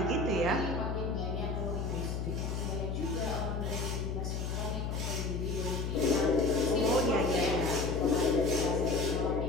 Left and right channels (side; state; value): left; noise; hum, 2 dB below the sound